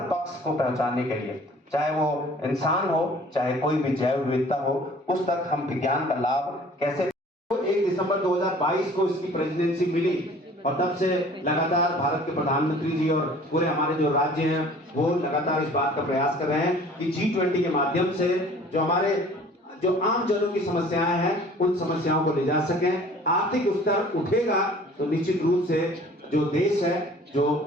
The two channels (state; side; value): normal; both; correlation 0.50